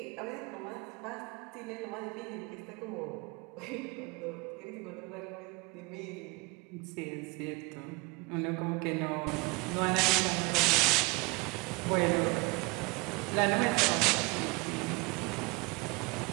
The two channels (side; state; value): left; quieter; 26.7 dB